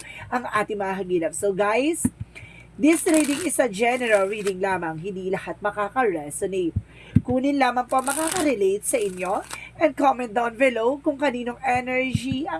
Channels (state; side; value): identical; both; correlation 1.00